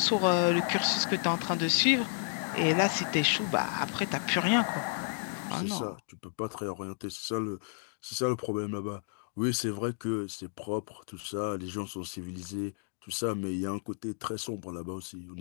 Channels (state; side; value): silent; right; digital silence